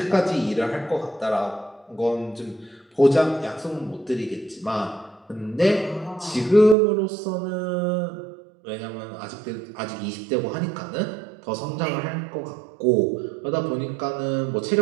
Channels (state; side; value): drops out; left; at 6.8 s